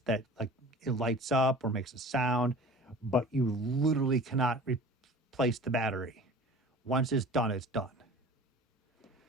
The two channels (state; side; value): normal; both; correlation 0.42